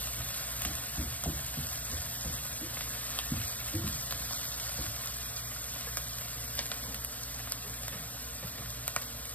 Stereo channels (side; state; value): right; late; 0.071 ms